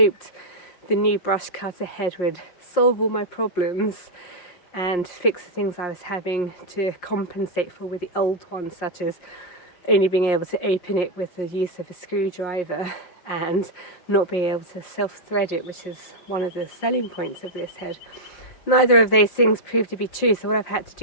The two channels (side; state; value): right; late; 5.6 ms